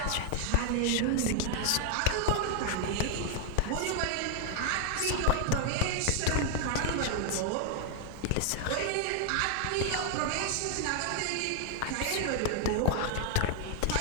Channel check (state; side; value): different; both; correlation 0.00